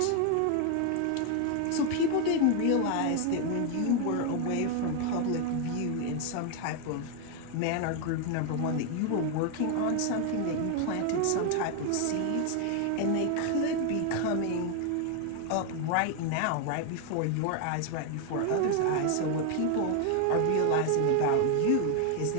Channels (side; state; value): both; different; correlation 0.01